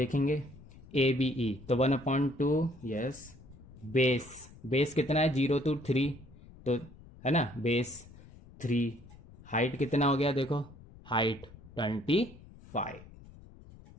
ए बी ई, तो 1/2. Yes, base. बेस कितना है? 0 to 3, तो है ना, बेस 3. हाइट कितना हो गया? देखो, हाइट 25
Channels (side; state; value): left; noise; rumble, 20 dB below the sound